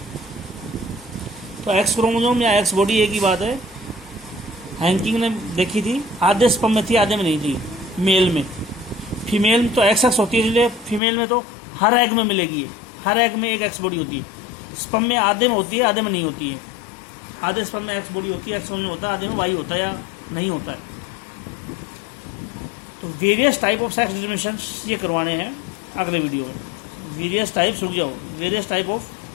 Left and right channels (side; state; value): right; drops out; at 11.0 s